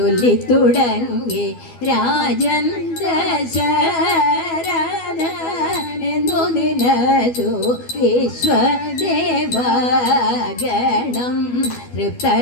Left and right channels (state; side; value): late; right; 12 ms